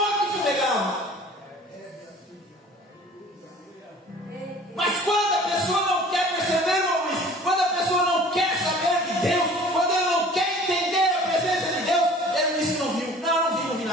fumegava. Mas quando a pessoa não quer perceber, irmão Luiz, quando a pessoa não quer saber de Deus, quando ela não quer entender a presença de Deus, ela diz que não viu. Não vi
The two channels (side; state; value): both; normal; correlation 0.47